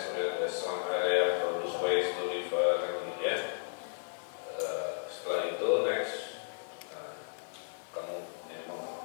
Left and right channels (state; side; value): silent; right; digital silence